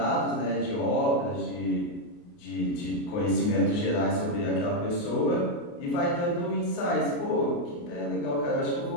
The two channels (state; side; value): late; right; 28 ms